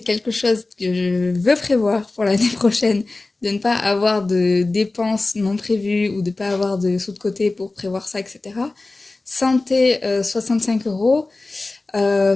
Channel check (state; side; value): quieter; right; 3.2 dB